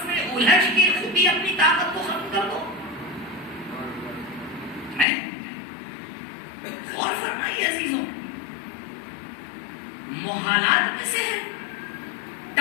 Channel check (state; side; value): drops out; right; at 5.1 s